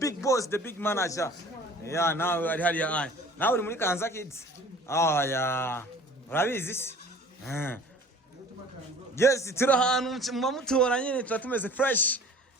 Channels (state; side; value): normal; both; correlation 0.47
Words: boss, the big manager. Yeah, now ari hali ya. Now uri muri KAYANZA Kids. Oh yeah. Urabizi? Yes, turi ahantu mutora nyine turatumeze fresh.